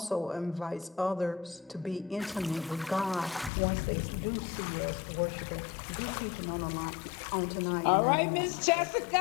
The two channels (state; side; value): drops out; right; at 3.5 s